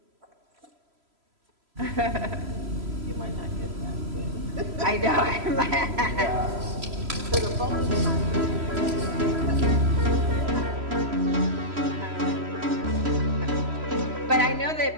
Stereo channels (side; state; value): left; late; 3.0 ms